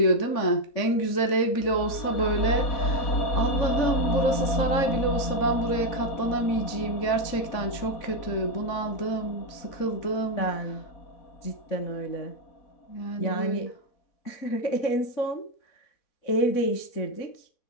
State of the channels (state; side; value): late; right; 3.6 ms